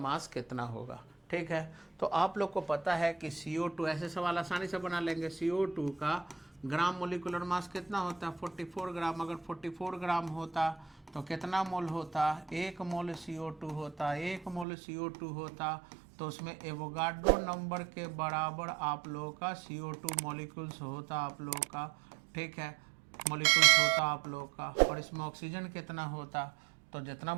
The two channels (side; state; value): left; drops out; at 14.7 s